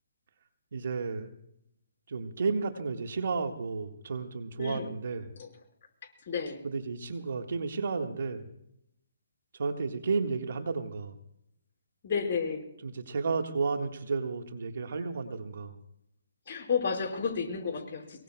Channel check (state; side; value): inverted; both; correlation -0.77